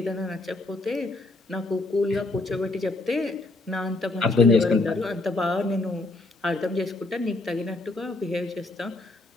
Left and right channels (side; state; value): right; quieter; 3.0 dB